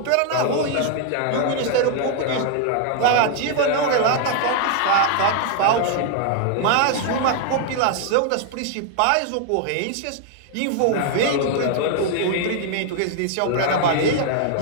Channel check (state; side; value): different; both; correlation 0.00